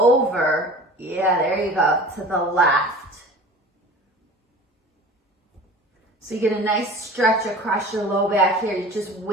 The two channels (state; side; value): normal; both; correlation 0.40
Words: Yeah, there you go, to the left. So you get a nice stretch across your low back here. You're just